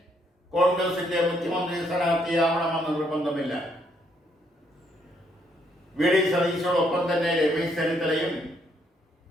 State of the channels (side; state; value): both; normal; correlation 0.72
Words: കോൺഗ്രസിന്റെ മുഖ്യമന്ത്രി സ്ഥാനാർത്ഥിയാവണമെന്ന് നിർബന്ധമില്ല. VD സതീശോടൊപ്പം തന്നെ രമേശ് ചെന്നിത്തലയും